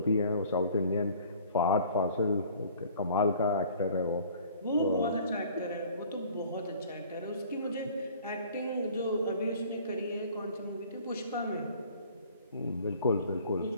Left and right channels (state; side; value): inverted; both; correlation -0.51